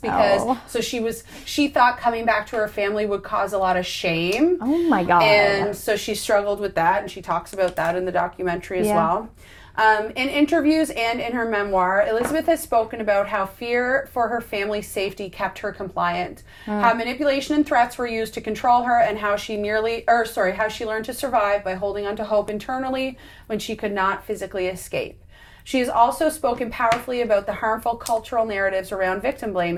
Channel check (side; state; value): both; identical; correlation 1.00